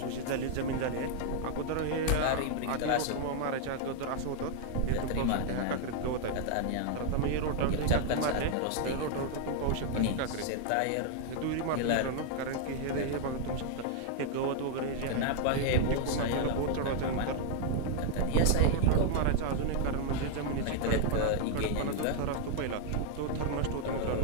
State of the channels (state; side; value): different; both; correlation 0.00